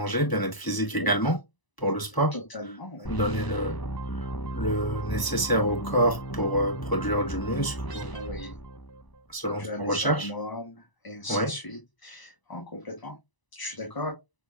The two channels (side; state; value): right; late; 1.0 ms